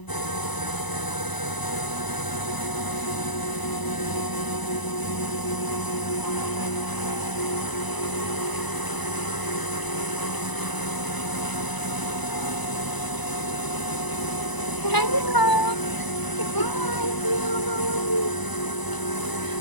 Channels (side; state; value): right; late; 1.0 ms